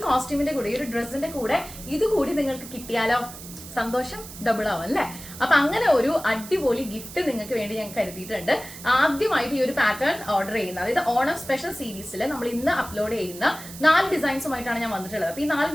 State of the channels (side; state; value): right; noise; hiss, 14 dB below the sound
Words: കോസ്റ്റ്യൂമിന്റെ കൂടെ, ഈ ഒരു ഡ്രസ്സിന്റെ കൂടെ ഇത് കൂടി നിങ്ങൾക്ക് കിട്ടിയാലോ സന്തോഷം ഡബിൾ ആവും അല്ലെ. അപ്പൊ അങ്ങനെ ഒരു അടിപൊളി ഗിഫ്റ്റ് നിങ്ങൾക്ക് വേണ്ടി ഞാൻ കരുതിയിട്ടുണ്ട്. ആദ്യമായിട്ട് ഈ ഒരു പാറ്റേൺ ഓർഡർ ചെയ്യുന്ന, അതായത് ഓണം സ്പെഷ്യൽ സീരീസിൽ നമ്മൾ ഇന്ന് അപ്ലോഡ് ചെയ്യുന്ന 4 ഡിസൈൻസുമായിട്ടാണ് ഞാൻ വന്നിട്ടുള്ളത്. അപ്പൊ ഈ 4